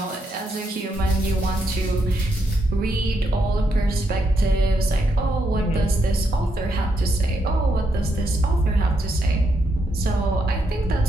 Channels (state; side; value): normal; both; correlation 0.79